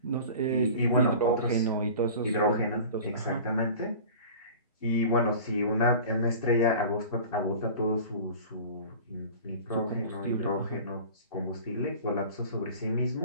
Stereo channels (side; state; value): both; inverted; correlation -0.39